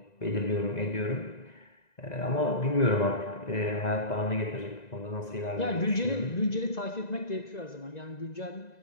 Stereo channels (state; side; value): late; right; 1.9 ms